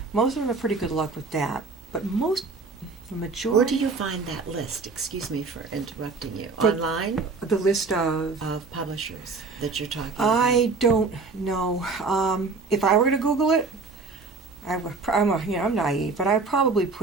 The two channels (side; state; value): left; quieter; 4.2 dB